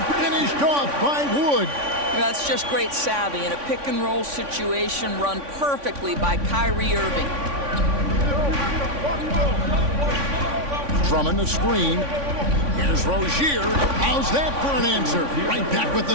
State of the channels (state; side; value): late; left; 3.5 ms